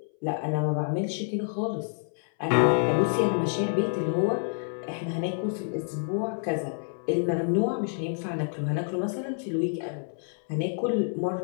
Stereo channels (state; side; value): silent; right; 59 dB below the other